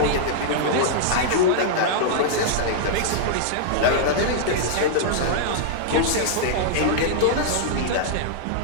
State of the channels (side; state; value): both; different; correlation -0.01